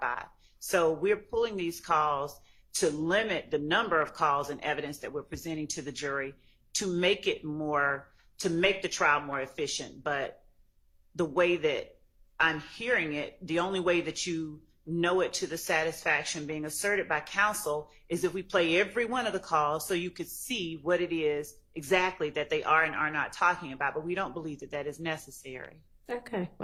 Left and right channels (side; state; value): both; identical; correlation 1.00